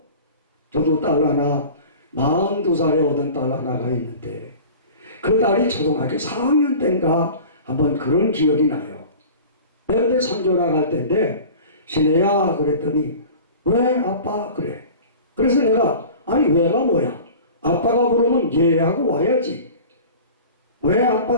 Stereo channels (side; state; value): both; inverted; correlation -0.40